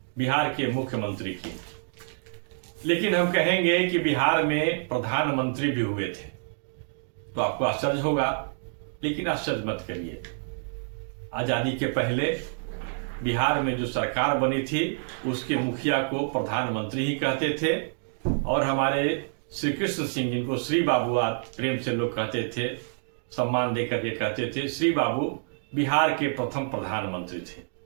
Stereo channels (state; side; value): silent; left; digital silence